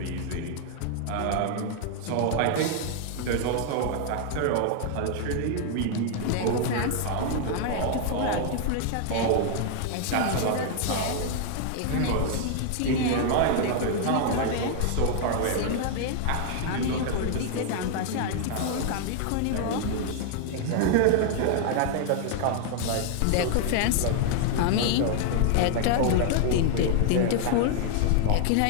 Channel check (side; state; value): both; different; correlation 0.00